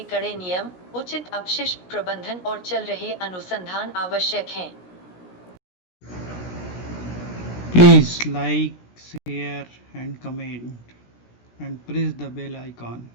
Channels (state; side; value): late; right; 17 ms